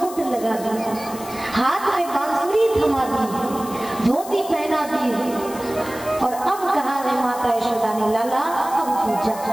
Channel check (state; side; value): noise; left; hiss, 15 dB below the sound